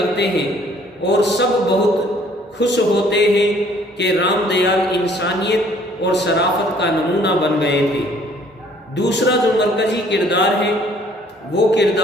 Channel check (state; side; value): normal; both; correlation 0.59